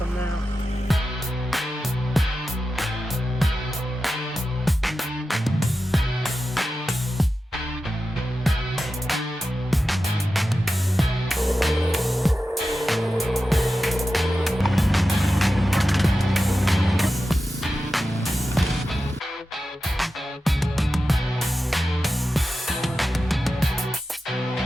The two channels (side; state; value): both; normal; correlation 0.92